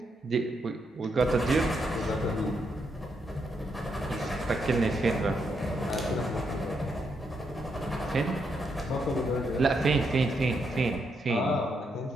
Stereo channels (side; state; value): both; normal; correlation 0.80